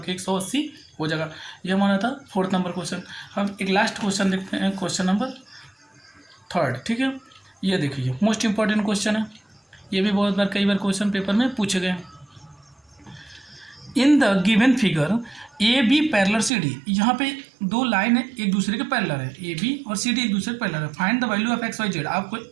180 हो जाएगा। ये हमारा था 4th नंबर क्वेश्चन। हम एक लास्ट क्वेश्चन देखते हैं, क्वेश्चन नंबर 3rd, ठीक है। ये देखिए मोस्ट इंपॉर्टेंट क्वेश्चन है। ये भी बहुत बार कई बार क्वेश्चन पेपर में पूछे गए। In the given figure A B parallel C D, यहाँ पे दो लाइन है एक दूसरे के पैरेलल है, ए बी और सी डी एक दूसरे के पैरेलल है। Find the value of x y z, आपको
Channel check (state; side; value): drops out; left; at 16.5 s